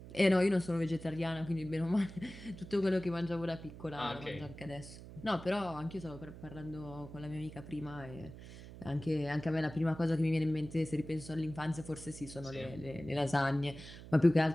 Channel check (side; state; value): right; noise; hum, 14 dB below the sound